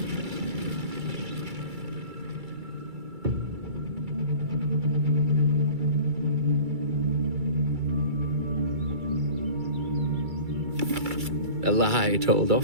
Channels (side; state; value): left; late; 2.3 ms